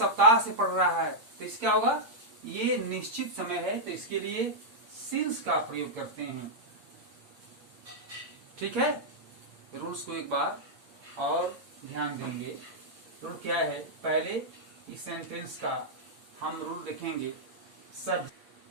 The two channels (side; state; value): left; late; 8.6 ms